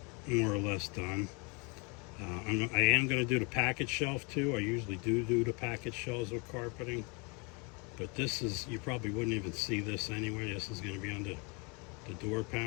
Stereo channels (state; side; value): quieter; right; 31.2 dB